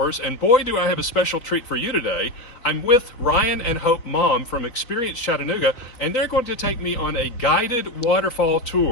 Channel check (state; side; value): late; right; 3.5 ms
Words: and boy do I have a special treat for you today. I'm with Ryan and Hope Maum from Experience Chattanooga, and they're going to take me on a guided waterfall